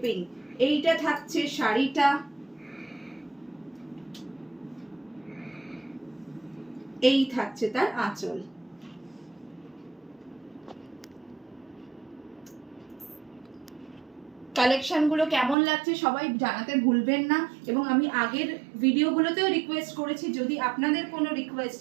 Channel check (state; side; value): drops out; left; at 15.6 s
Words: এইটা থাকছে শাড়িটা, এই থাকছে তার আঁচল। কালেকশনগুলো কেমন লাগছে সবাই জানাতে ভুলবেন না, এবং আমি আগের ভিডিওগুলোতেও রিকোয়েস্ট করেছি যদি আপনাদের কোনো